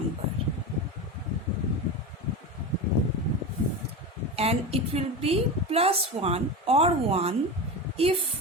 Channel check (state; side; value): normal; both; correlation 0.23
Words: and it will be plus 1 or 1